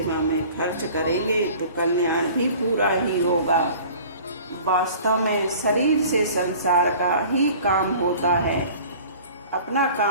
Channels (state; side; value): inverted; both; correlation -0.46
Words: में खर्च करेंगे तो कल्याण भी पूरा ही होगा। वास्तव में शरीर से संसार का ही काम होता है, अपना